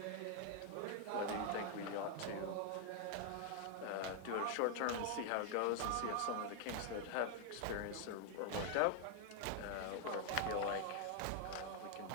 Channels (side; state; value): both; different; correlation 0.00